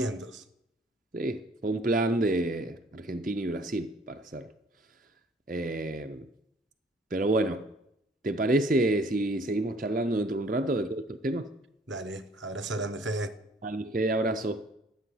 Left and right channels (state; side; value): normal; both; correlation 0.57